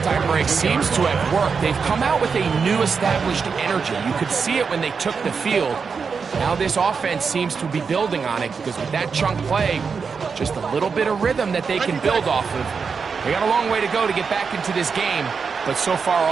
break seems to have worked. They've come out with a new established energy. You could see it when they took the field. Now this offense seems to be building on it because with that chunk play, just a little bit of rhythm that they can build off of. They got a long way to go to get back into this game, but so far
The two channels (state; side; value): quieter; left; 5.5 dB